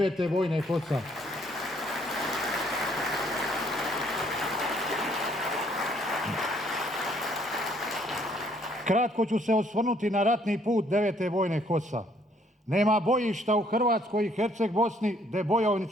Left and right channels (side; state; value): both; normal; correlation 0.65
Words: bojne HOS-a. Kratko ću se osvrnuti na ratni put 9. bojne HOS-a. Nema bojišta u Hrvatskoj i Herceg Bosni gdje